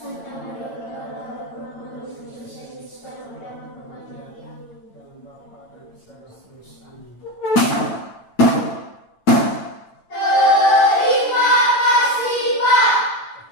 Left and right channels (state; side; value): late; right; 9.0 ms